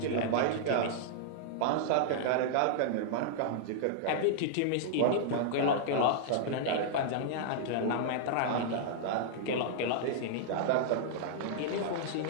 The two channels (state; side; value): different; both; correlation -0.01